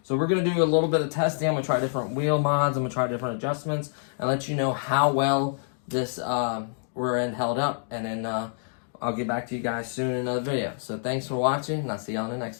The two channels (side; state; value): right; silent; digital silence